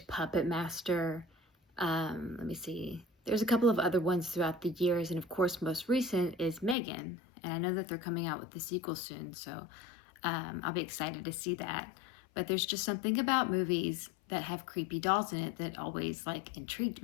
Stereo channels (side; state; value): right; drops out; at 6.8 s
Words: Puppet Master. Let me see. There's a couple of other ones throughout the years. And of course, most recent is Megan. And I know that they're coming out with the sequel soon. So I'll be excited to see that. But there's just something about movies that have creepy dolls in it that always like intrigued